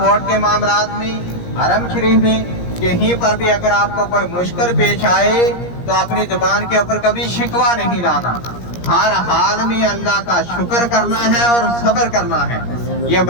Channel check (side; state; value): right; late; 17 ms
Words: के मामलात में, हरम शरीफ में, कहीं पर भी अगर आपको कोई मुश्किल पेश आए तो अपनी जुबान के ऊपर कभी शिकवा नहीं लाना। हर हाल में अल्लाह का शुक्र करना है और सब्र करना है। ये